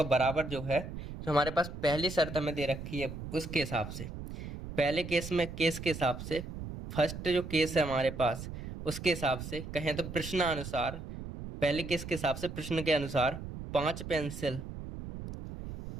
बराबर जो है, जो हमारे पास पहली शर्त हमें दे रखी है उसके हिसाब से, पहले केस के हिसाब से, फर्स्ट जो केस है हमारे पास उसके हिसाब से कहें तो प्रश्नानुसार, पहले केस के हिसाब से प्रश्न के अनुसार 5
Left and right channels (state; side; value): noise; right; rumble, 9 dB below the sound